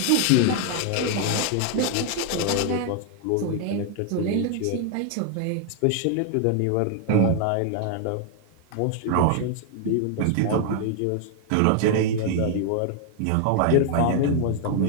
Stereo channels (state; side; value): different; both; correlation 0.00